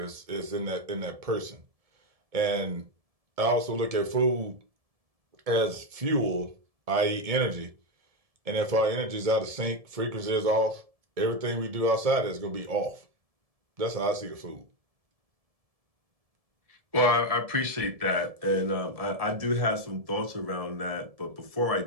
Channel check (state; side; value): late; left; 1.7 ms